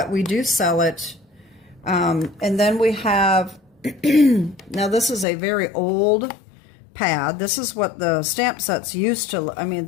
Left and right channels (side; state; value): right; drops out; at 5.2 s